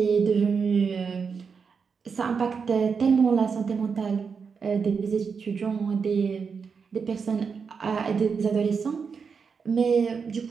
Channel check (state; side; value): quieter; left; 5.7 dB